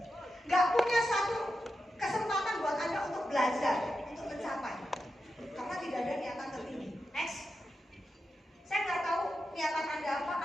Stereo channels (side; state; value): both; normal; correlation 0.89